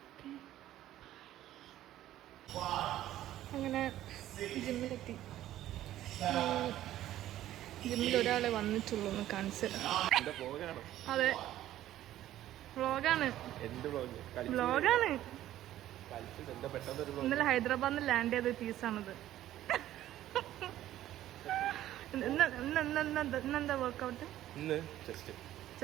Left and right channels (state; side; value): quieter; left; 13.3 dB